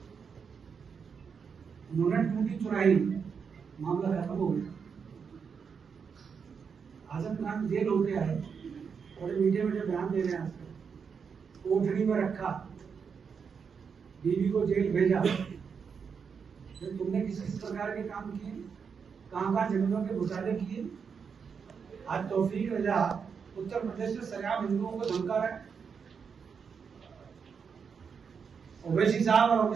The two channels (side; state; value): left; quieter; 6.2 dB